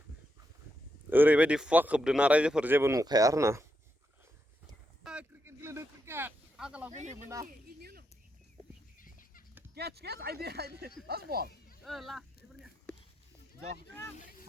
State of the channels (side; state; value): both; normal; correlation 0.83